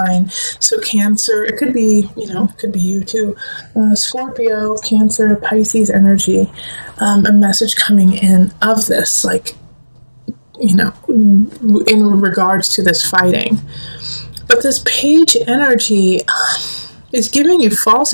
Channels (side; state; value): both; inverted; correlation -1.00